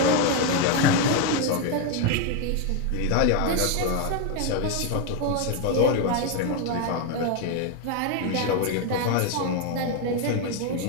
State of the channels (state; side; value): different; both; correlation 0.01